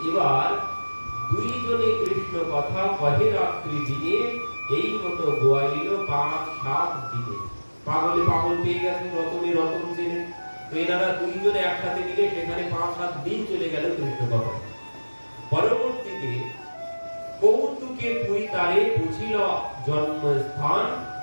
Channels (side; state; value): both; inverted; correlation -1.00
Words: এবার দুইজনে কৃষ্ণ কথা কহে রাত্রি দিনে, এই মতো গোয়াইল 5-7 দিনে। পাগলে পাগল পেয়ে গেছেন, রতনে রতন চেনে। তো এনারা দুইজনে একসাথে মিলে সেখানে 5-7 দিন চলে গেল কৃষ্ণ কথা। পরবর্তীতে কৌতুকে পুরী তারে বুঝিল জন্মস্থান,